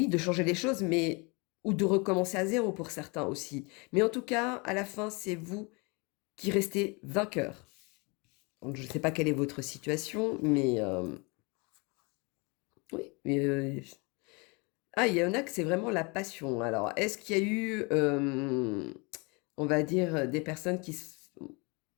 de changer les choses, mais ou de recommencer à zéro pour certains aussi. Mais en tout cas, à la fin, c'est vous qui restez vainqueur. Donc, je ne sais pas quelle est votre situation, mais oui. Mais, ah, il y en a que c'est vraiment la passion. Alors, est-ce qu'il y a eu, on va dire, des personnes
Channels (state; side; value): quieter; right; 29.7 dB